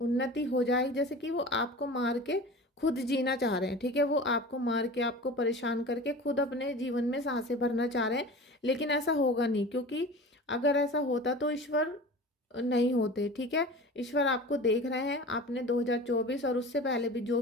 हो जाए, जैसे कि वो आपको मार के खुद जीना चाह रहे हैं, ठीक है। वो आपको मार के, आपको परेशान करके खुद अपने जीवन में सांसें भरना चाह रहे हैं, लेकिन ऐसा होगा नहीं, क्योंकि अगर ऐसा होता तो ईश्वर नहीं होते, ठीक है। ईश्वर आपको देख रहे हैं, आपने 2024 और उससे पहले भी जो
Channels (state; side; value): normal; both; correlation 0.36